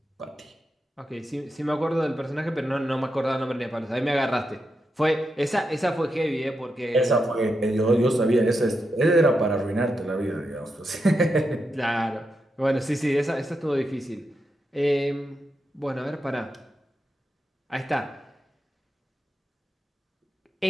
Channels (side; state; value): both; normal; correlation 0.86